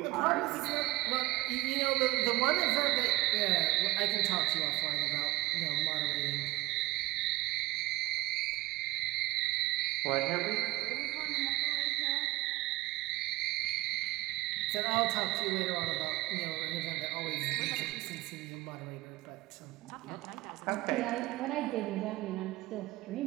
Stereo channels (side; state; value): left; quieter; 19.5 dB